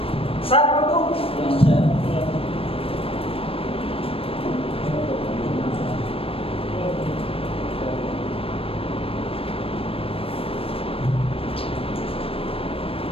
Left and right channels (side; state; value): right; late; 0.27 ms